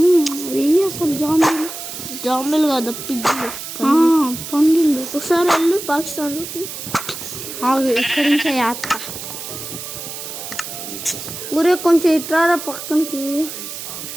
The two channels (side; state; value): right; noise; hiss, 9 dB below the sound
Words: అసలు జాంబీలు కదా పిగ్గులు పండిళ్ళు. ఒకసారి వెళ్ళు పాకిస్తాన్లోకి. ఇక్కడి నుంచి యాత్ర ఊరే కొంచెం ఇట్రారా పక్కనకి